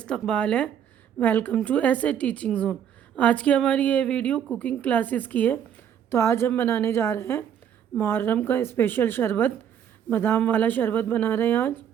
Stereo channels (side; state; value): left; quieter; 9.0 dB